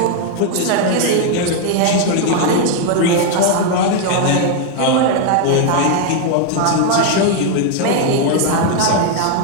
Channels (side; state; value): both; different; correlation 0.01